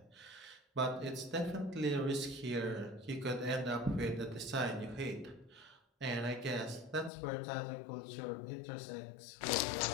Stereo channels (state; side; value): drops out; right; at 7.1 s